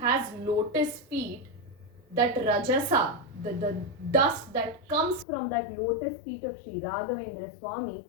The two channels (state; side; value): drops out; right; at 5.2 s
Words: lotus feet, that rajasa, the dust that comes from that lotus feet of Sri Raghavendra Swami